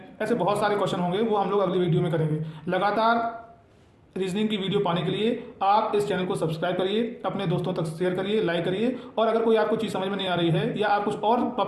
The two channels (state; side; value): identical; both; correlation 1.00